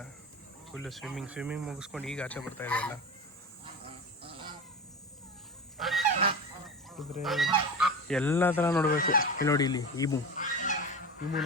ಫುಲ್ಲು ಸ್ವಿಮ್ಮಿಂಗ್ ಮುಗಿಸ್ಕೊಂಡು ಈಗ ಆಚೆ ಬರ್ತಾ ಇದೆ ಎಲ್ಲ. ಕುದುರೆ ಎಲ್ಲ ಥರ ನೋಡಬೇಕು. ಇಲ್ಲಿ ನೋಡಿ, ಇಲ್ಲಿ ಈಮು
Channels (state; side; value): normal; both; correlation 0.28